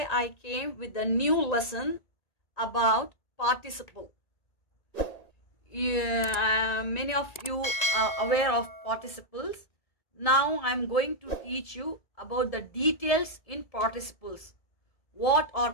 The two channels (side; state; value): right; late; 1.9 ms